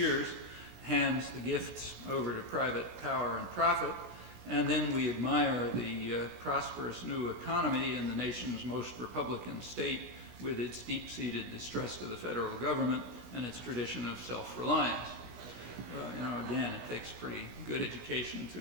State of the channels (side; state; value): left; late; 16 ms